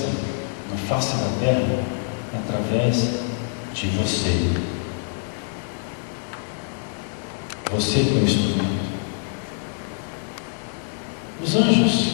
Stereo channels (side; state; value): right; silent; digital silence